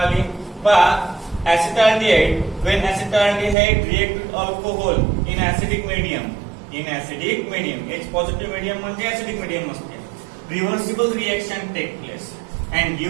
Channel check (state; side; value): drops out; left; at 3.6 s